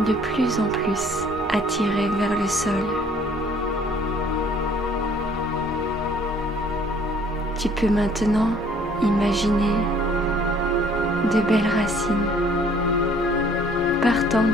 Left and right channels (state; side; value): noise; right; hum, 28 dB below the sound